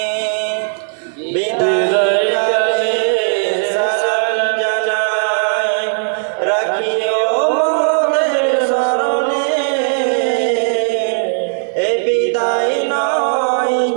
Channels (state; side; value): silent; left; digital silence